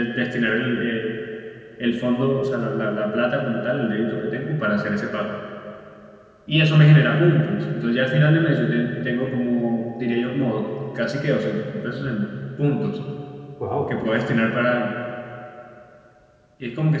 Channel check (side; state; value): both; identical; correlation 1.00